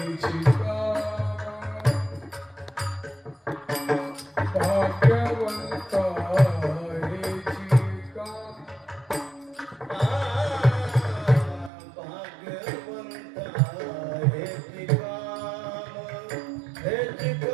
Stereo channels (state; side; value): drops out; left; at 11.7 s